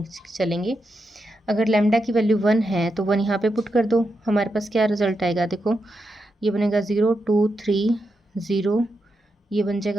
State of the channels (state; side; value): normal; both; correlation 0.86